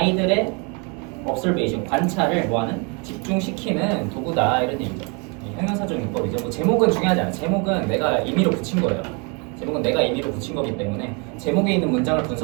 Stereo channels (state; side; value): quieter; left; 33.1 dB